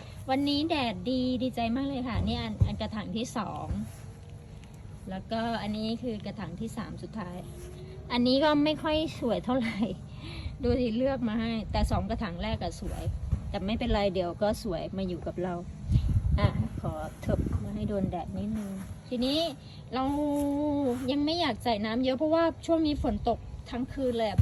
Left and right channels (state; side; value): identical; both; correlation 1.00